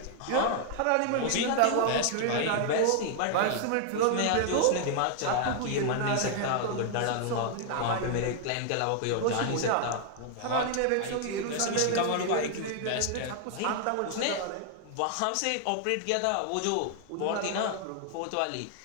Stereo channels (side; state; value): both; different; correlation 0.00